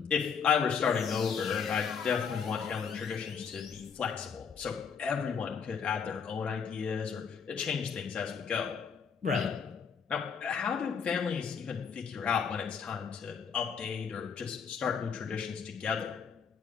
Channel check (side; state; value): right; quieter; 6.5 dB